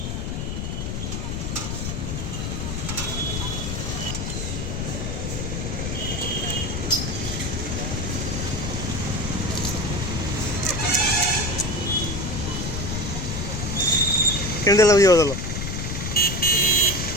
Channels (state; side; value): noise; left; rumble, 3 dB below the sound